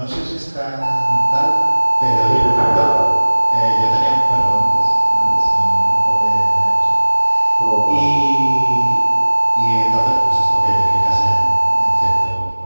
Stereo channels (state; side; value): inverted; both; correlation -1.00